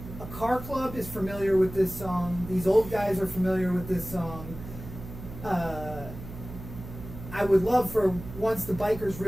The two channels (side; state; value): right; noise; hum, 12 dB below the sound